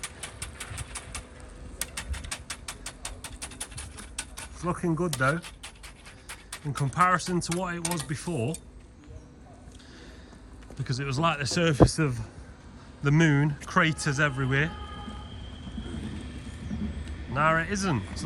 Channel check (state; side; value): identical; both; correlation 1.00